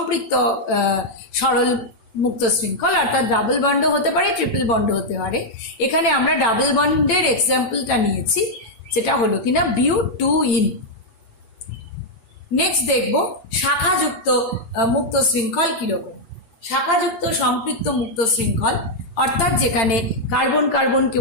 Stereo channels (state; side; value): late; right; 8.8 ms